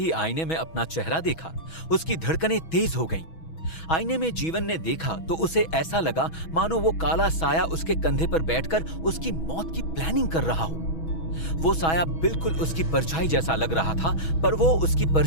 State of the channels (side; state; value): right; late; 6.2 ms